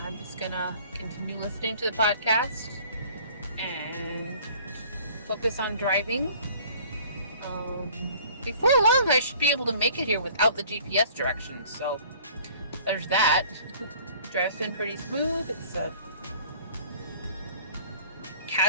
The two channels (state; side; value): inverted; both; correlation -0.51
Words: just gonna continue listening to the podcast and focus on driving. Before long, I should be able to make it here without the GPS directions, so there's that. Drive's been pretty smooth. It's a